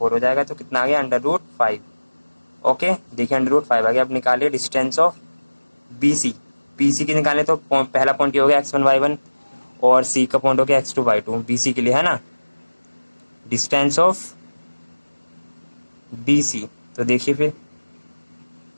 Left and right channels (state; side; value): inverted; both; correlation -1.00